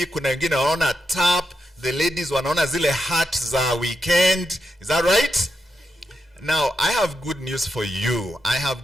kuna wengine wanaona tap. The ladies wanaona zile hat za weekend. Is that right? Now, I have good news for you. I have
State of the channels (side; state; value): both; normal; correlation 0.85